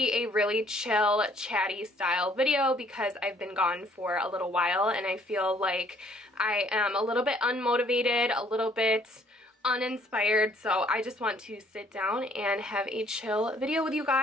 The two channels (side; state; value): both; normal; correlation 0.62